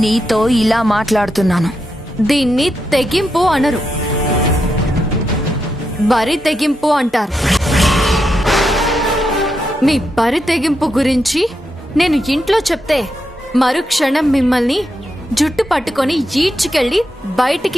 నీతో ఇలా మాట్లాడుతున్నాను. దీన్ని తెగింపు అనరు, బరి తెగింపు అంటారు. మీ బరి తెగింపు గురించి నేను ఇంట్లో చెప్తే మరుక్షణం మిమ్మల్ని జుట్టు పట్టుకొని ఈడ్చుకెళ్ళి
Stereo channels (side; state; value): both; normal; correlation 0.84